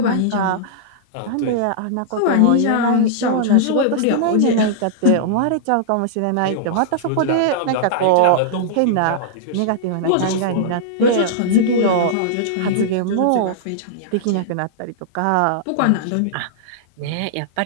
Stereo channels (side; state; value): both; different; correlation -0.02